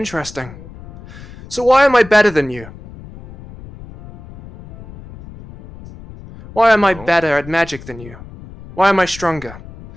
So why am I better than you? Why am I better at magic than you? Why am I stronger?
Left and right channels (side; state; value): left; noise; rumble, 17 dB below the sound